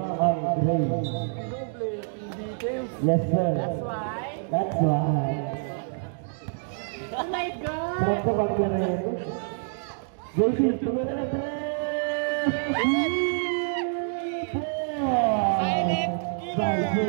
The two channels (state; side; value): silent; left; digital silence